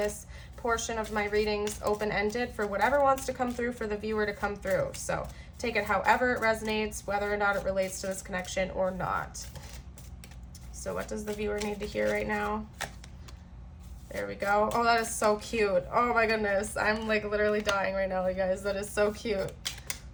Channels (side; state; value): both; identical; correlation 1.00